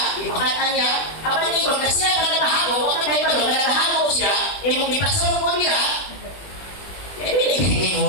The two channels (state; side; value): late; right; 20 ms